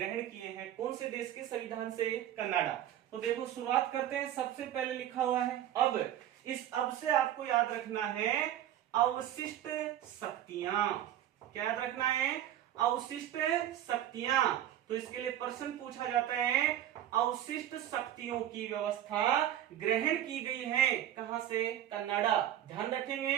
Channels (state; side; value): quieter; left; 11.6 dB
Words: किए हैं। कौन से देश के संविधान से? कनाडा। तो देखो शुरुआत करते हैं। सबसे पहले लिखा हुआ है अब। इस अब से आपको याद रखना है अवशिष्ट शक्तियां। क्या याद रखना है? अवशिष्ट शक्तियां। तो इसके लिए प्रश्न पूछा जाता है, अवशिष्ट शक्तियों की व्यवस्था ग्रहण की गई है कहां से? कनाडा। ध्यान